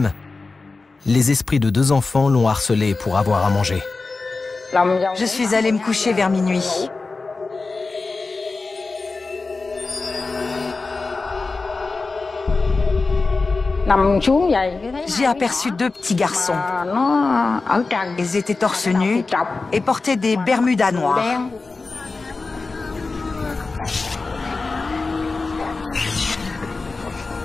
les esprits de 2 enfants l'ont harcelée pour avoir à manger. Je suis allée me coucher vers minuit. J'ai aperçu 2 petits garçons. Ils étaient torse nus et portaient des bermudas noirs.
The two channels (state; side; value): quieter; right; 3.8 dB